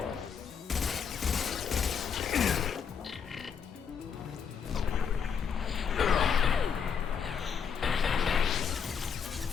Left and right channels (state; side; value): quieter; right; 6.9 dB